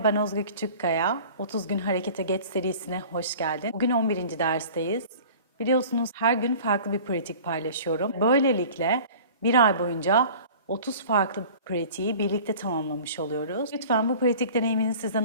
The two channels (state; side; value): inverted; both; correlation -0.43